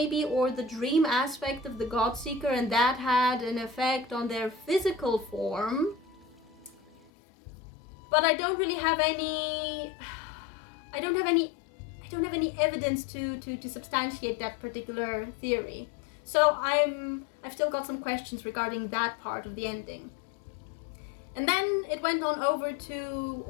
or the dream aspect of the Godseeker, and that had an effect on their physical form. But I don't really have any evidence to substantiate that particular theory. So I've still got some questions regarding that part of the ending. And then it went on over to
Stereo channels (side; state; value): right; drops out; at 7.1 s